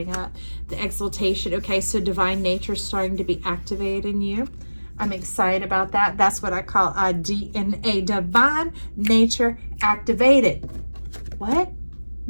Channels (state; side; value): inverted; both; correlation -1.00